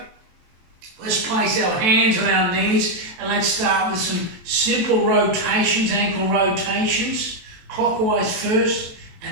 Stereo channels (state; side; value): late; left; 23 ms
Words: Let's place our hands on our knees and let's start with some simple rotations, ankle rotations, clockwise first,